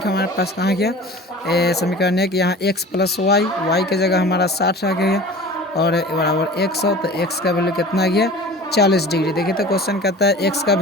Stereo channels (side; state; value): both; normal; correlation 0.40